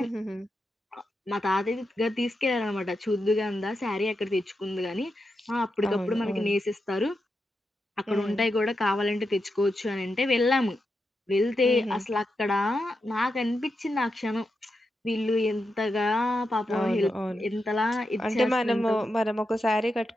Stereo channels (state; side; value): normal; both; correlation 0.87